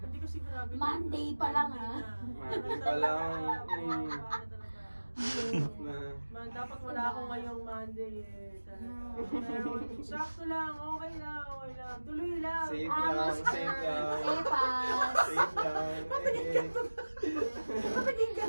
Hindi ko sigurado. Monday pa lang, Monday pa lang. Dapat wala ako ngayong Monday eh. Pero sakto lang, okay lang. Tuloy lang. Safe lang, safe lang. Safe lang. Naging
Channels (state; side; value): inverted; both; correlation -1.00